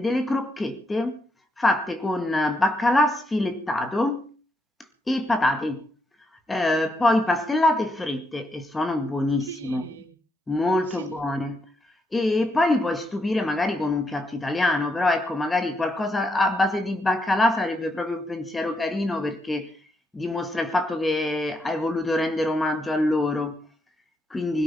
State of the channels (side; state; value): both; normal; correlation 0.79